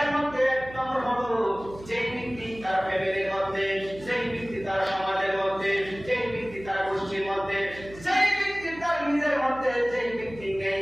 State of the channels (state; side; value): noise; right; hum, 17 dB below the sound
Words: মধ্যে এক নম্বর হলো, যেই ব্যক্তি তার ফ্যামিলির মধ্যে, যেই ব্যক্তি তার সমাজের মধ্যে, যেই ব্যক্তি তার গোষ্ঠীর মধ্যে, যেই ব্যক্তি তার নিজের মধ্যে, যেই ব্যক্তি নেই